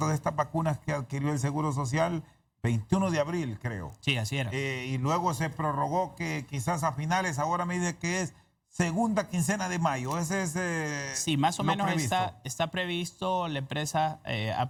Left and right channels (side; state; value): both; identical; correlation 1.00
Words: de estas vacunas que adquirió el Seguro Social, 21 de abril creo. Sí, así era. Y luego se prorrogó que quizás a finales, ahora me dice que es segunda quincena de mayo. Ese es sí, más o menos previsto. Está previsto, la empresa ha